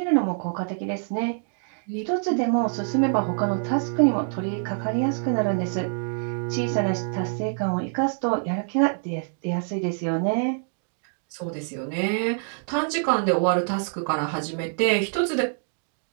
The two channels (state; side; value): silent; left; digital silence